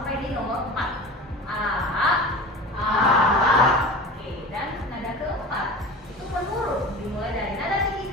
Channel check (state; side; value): normal; both; correlation 0.34